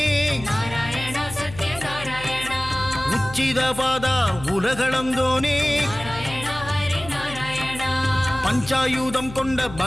உச்சித பாதா உலகளந்தோனே, பஞ்சாயுதம் கொண்ட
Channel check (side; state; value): left; noise; hum, 14 dB below the sound